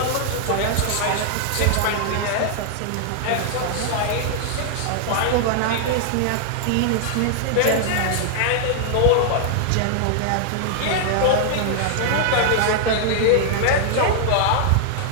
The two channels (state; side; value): different; both; correlation -0.01